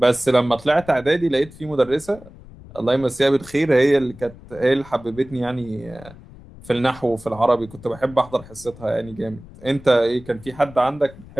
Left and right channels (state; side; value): noise; left; rumble, 20 dB below the sound